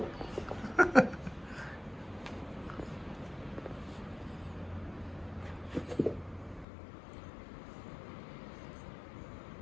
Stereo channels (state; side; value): drops out; right; at 6.7 s